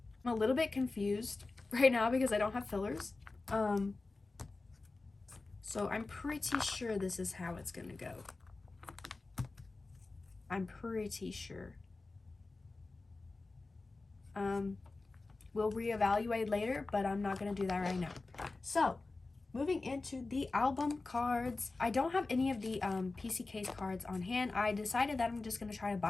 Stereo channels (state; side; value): quieter; right; 3.5 dB